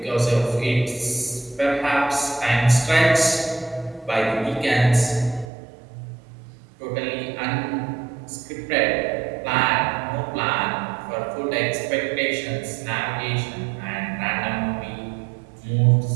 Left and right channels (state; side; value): drops out; left; at 5.5 s